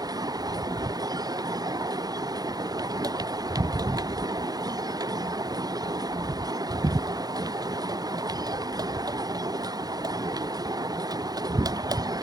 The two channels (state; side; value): late; left; 0.19 ms